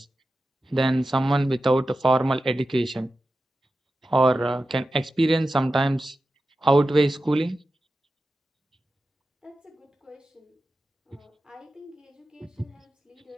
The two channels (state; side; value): normal; both; correlation 0.93